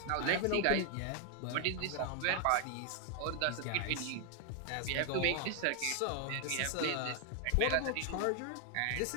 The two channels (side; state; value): both; different; correlation 0.00